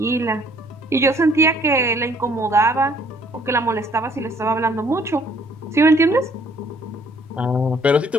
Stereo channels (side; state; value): both; normal; correlation 0.61